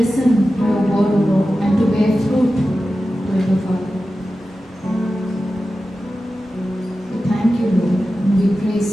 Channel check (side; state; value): both; normal; correlation 0.93